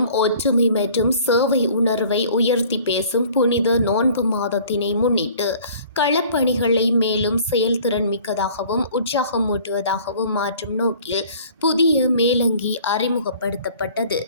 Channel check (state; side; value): inverted; both; correlation -0.51